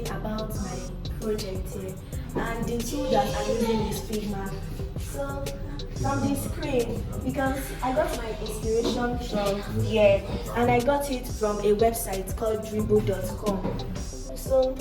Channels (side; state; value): both; identical; correlation 1.00